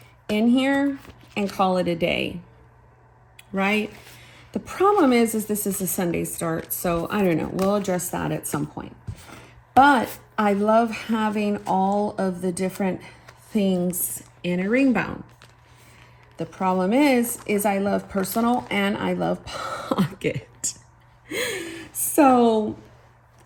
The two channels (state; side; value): identical; both; correlation 1.00